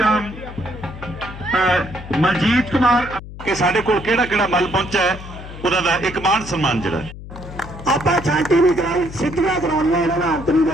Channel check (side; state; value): left; noise; hum, 13 dB below the sound